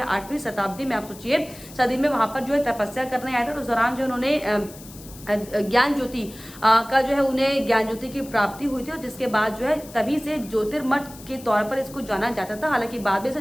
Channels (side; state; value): left; noise; hiss, 18 dB below the sound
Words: 8वीं शताब्दी में, आप सोचिए, सदी में वहां पर जो है तपस्या करने आए थे। तो उस दौरान जो उन्होंने ज्ञान ज्योति का जो है उन्हें ज्ञान ज्योति की प्राप्ति हुई थी और जिसके बाद जो है तभी से ज्योतिर्मठ के तौर पर इसको जाना जाता था। हालांकि बाद में इसे